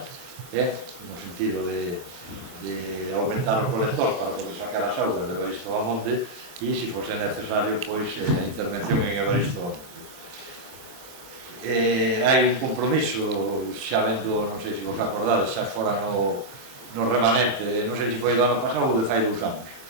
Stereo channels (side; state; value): left; late; 23 ms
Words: no sentido de aumentar o colector para poder sacar as augas de Evaristo Bamonde e, se fose necesario, pois a intervención en Evaristo Bamonde. Hai un compromiso, xa vendo, non sei se vos acordades, xa fora no remanente, non sei se foi do ano pasado ou de fai 2 anos,